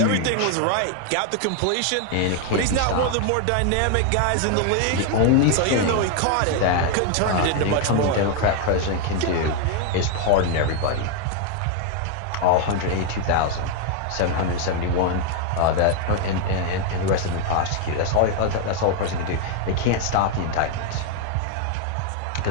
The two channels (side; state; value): both; different; correlation 0.01